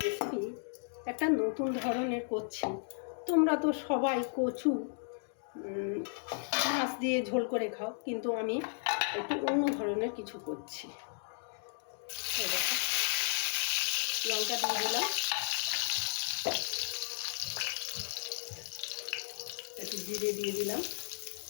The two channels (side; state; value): right; silent; digital silence